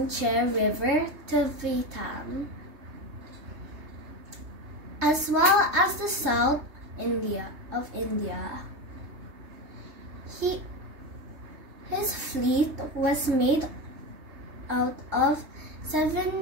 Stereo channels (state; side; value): late; left; 3.3 ms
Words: River to Vietnam, as well as the South of India. His fleet was made out of